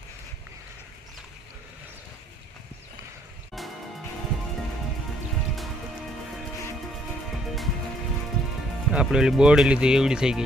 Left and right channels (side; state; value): both; normal; correlation 0.67